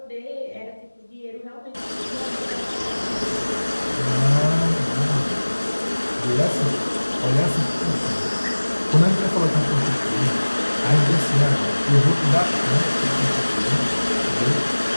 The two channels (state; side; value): inverted; both; correlation -1.00